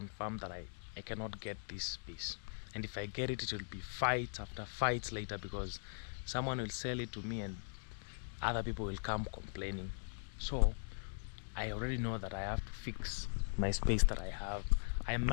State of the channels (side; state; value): right; silent; digital silence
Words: that I cannot get this piece, and if I get it, it will be fights after fights later, because someone will sell it to me and other people will come complaining. So I already know that I have to fix my space that I have. I